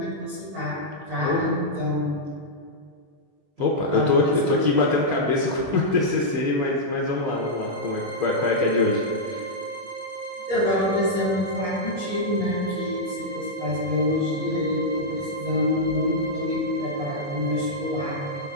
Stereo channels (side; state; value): left; late; 21 ms